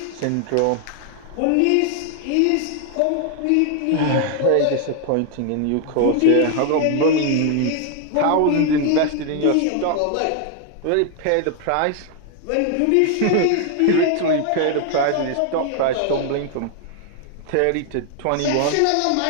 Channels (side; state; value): both; different; correlation 0.00